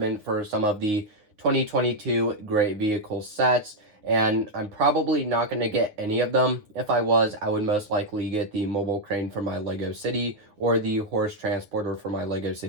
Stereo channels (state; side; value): late; left; 9.4 ms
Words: for some of the 2022 Great Vehicle sets. And I'm probably not going to get any of them. If I was, I would most likely get the mobile crane for my Lego City or the horse transporter for my Lego